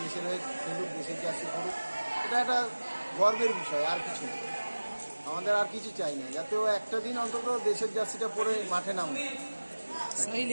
হয়ে খেলুক, দেশের জার্সি পড়ুক। এটা একটা গর্বের বিষয়, আর কিছু না। আমাদের আর কিছু চাই না, যাতে ও একটা দিন অন্তত দেশের জার্সিটা পরে মাঠে নামে। সাহিল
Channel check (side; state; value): both; inverted; correlation -1.00